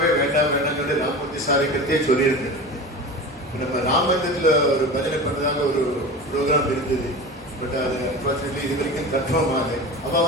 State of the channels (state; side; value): normal; both; correlation 0.31